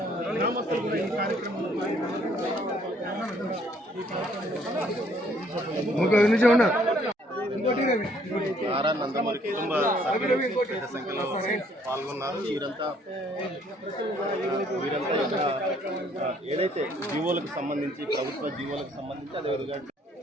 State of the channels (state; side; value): normal; both; correlation 0.64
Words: గ్రామస్తులు కూడా ఈ కార్యక్రమంలో నారా నందమూరి కుటుంబ సభ్యులు పెద్ద సంఖ్యలో పాల్గొన్నారు. వీరంతా ఏదైతే జీవోలకు సంబంధించి, ప్రభుత్వ జీవోలకు సంబంధించి అదేవిధంగా